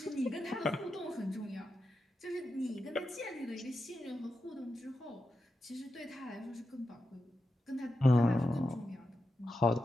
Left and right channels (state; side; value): normal; both; correlation 0.88